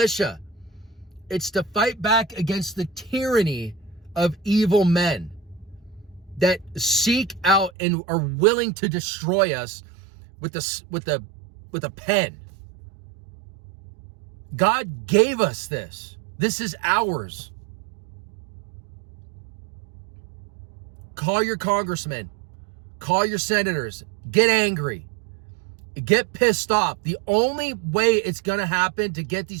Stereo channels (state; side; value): drops out; left; at 7.7 s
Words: It's to fight back against the tyranny of evil men that seek out and are willing to destroy us with a pen. God gave us this. This is ours. Call your congressmen. Call your senators. Get angry. Get pissed off. The only way it's going to happen to get